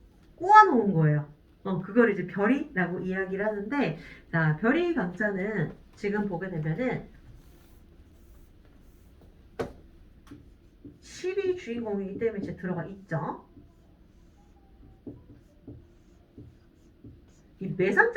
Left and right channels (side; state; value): both; identical; correlation 1.00